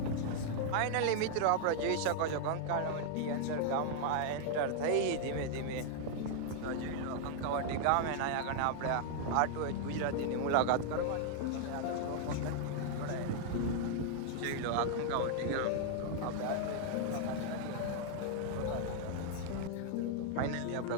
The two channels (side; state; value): both; different; correlation -0.01